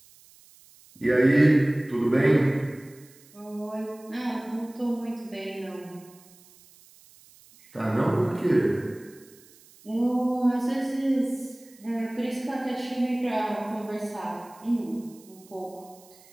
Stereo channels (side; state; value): right; noise; hiss, 26 dB below the sound